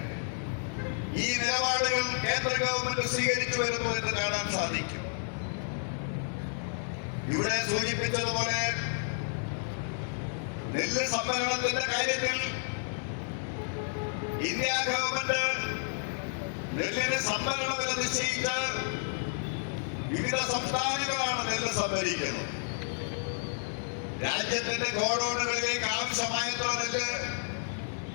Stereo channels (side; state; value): right; silent; 57 dB below the other